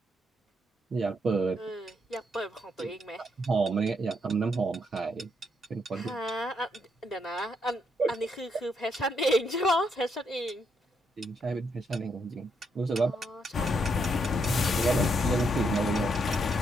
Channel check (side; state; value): both; normal; correlation 0.76